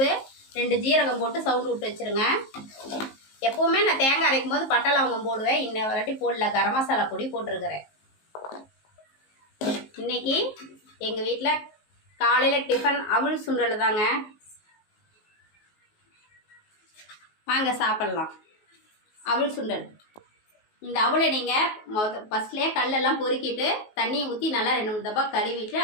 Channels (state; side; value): late; right; 19 ms